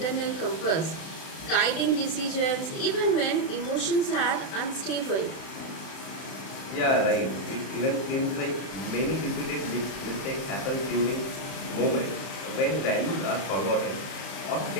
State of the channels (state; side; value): late; right; 32 ms